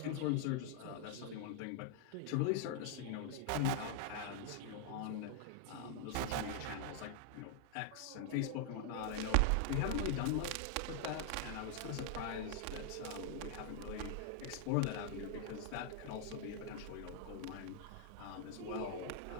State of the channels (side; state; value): both; different; correlation 0.00